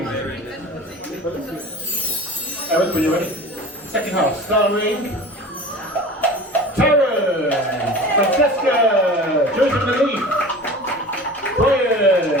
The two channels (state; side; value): normal; both; correlation 0.37